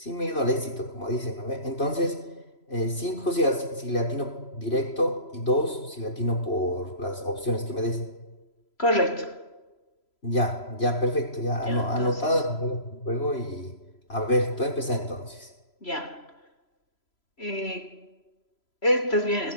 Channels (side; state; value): right; late; 3.0 ms